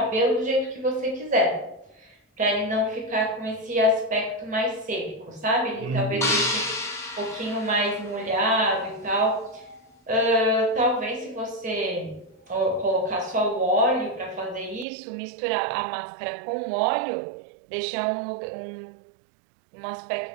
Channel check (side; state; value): left; drops out; at 14.9 s